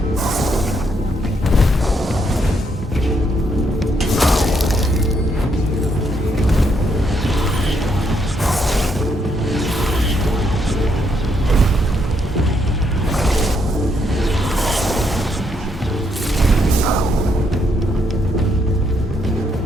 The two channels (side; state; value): both; normal; correlation 0.75